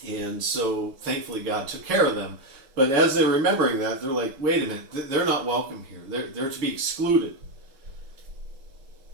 And so thankfully God took care of them. But as they're remembering that, they're like, wait a minute, they're not welcome here. They're to be excluded.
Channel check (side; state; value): left; late; 7.2 ms